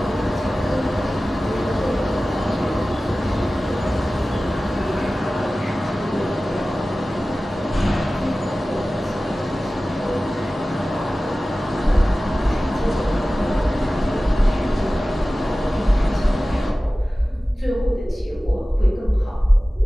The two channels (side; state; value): both; normal; correlation 0.96